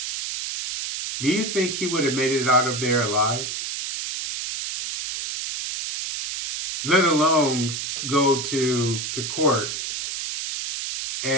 Do you think he would have made it out of there alive? Let alone go to court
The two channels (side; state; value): right; noise; hiss, 5 dB below the sound